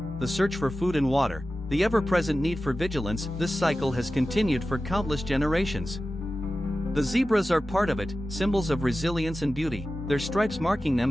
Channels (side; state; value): both; normal; correlation 0.94